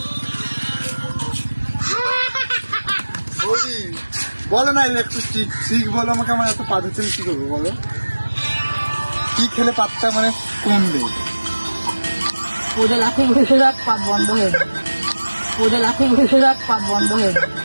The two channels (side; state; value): both; inverted; correlation -1.00